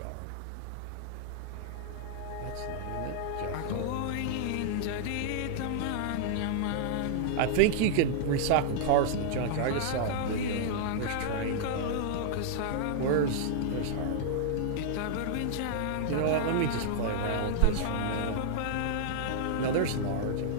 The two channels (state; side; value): different; both; correlation -0.01